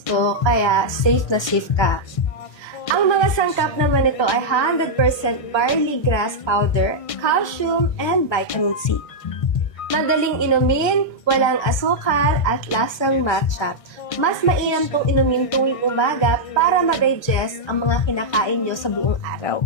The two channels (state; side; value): late; right; 1.3 ms